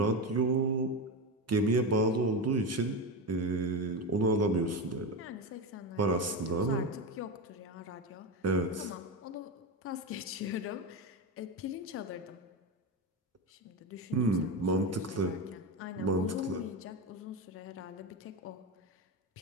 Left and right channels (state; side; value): normal; both; correlation 0.17